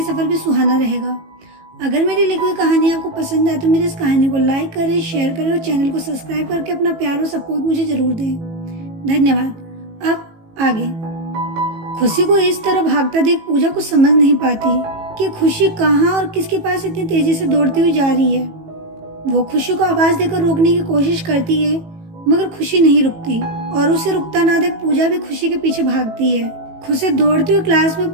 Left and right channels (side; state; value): left; late; 18 ms